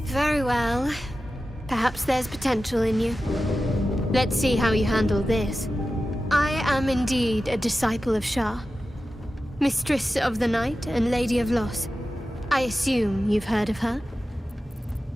Very well. Perhaps there's potential in you. Let's see how you handle this. I am indeed a disciple of Shah, Mistress of the Night and Lady of Loss. I assume you've heard of her?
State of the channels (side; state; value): both; normal; correlation 0.93